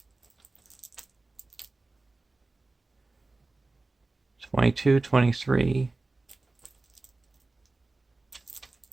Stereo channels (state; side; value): quieter; left; 3.3 dB